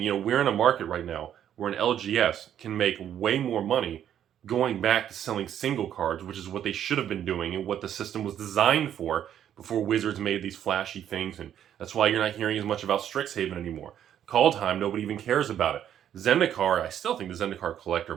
We're in a market right now where an LGS can make way more money going back to selling single cards, which is what they should have been doing and what the system was designed for before Wizards made these flashy things. And that's why you're not hearing as much about StrixHaven anymore. Kaldheim, nobody even cares about it. Zendikar, I still think the Zendikar collector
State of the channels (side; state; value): left; quieter; 10.1 dB